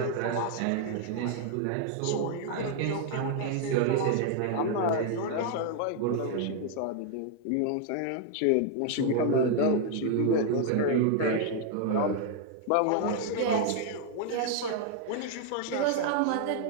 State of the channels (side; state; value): both; different; correlation 0.00